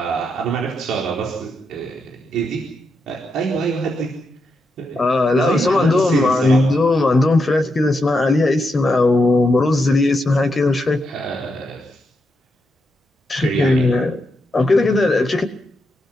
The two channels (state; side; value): normal; both; correlation 0.84